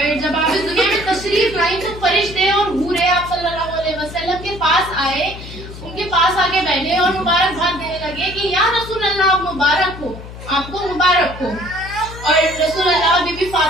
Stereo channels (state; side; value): noise; left; hum, 13 dB below the sound